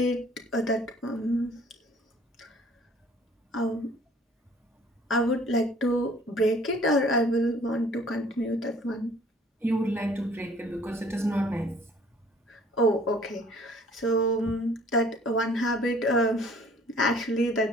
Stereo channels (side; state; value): both; normal; correlation 0.54